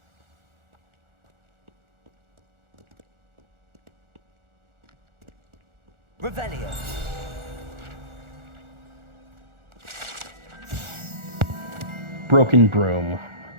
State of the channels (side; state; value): left; late; 1.4 ms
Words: Revelio. Broken broom.